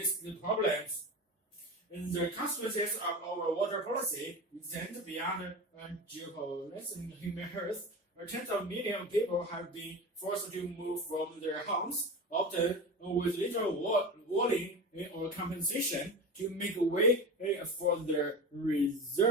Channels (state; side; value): normal; both; correlation 0.27